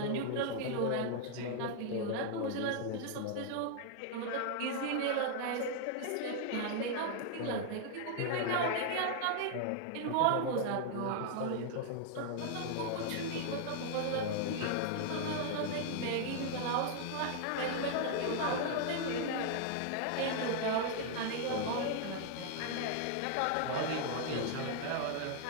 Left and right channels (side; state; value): both; different; correlation 0.00